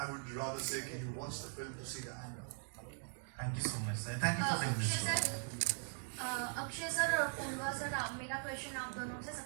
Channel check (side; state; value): left; silent; 51 dB below the other